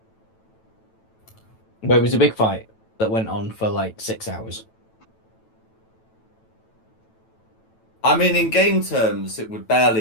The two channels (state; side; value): late; right; 9.1 ms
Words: But it was a big fight that went on for like 6 hours. I mean, in game terms, it would